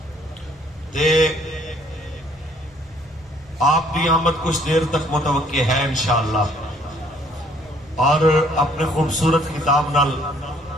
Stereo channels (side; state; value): both; normal; correlation 0.62